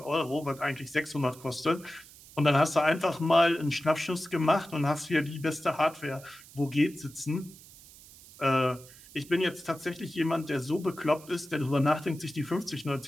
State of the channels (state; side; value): noise; right; hiss, 21 dB below the sound